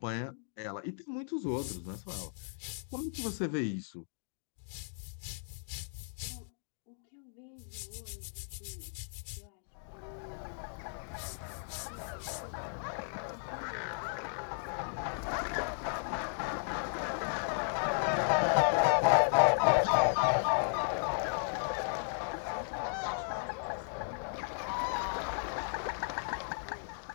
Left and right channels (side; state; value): right; silent; digital silence